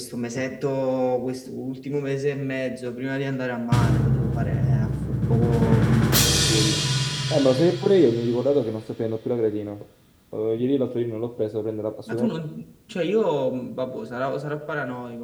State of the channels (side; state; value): both; identical; correlation 1.00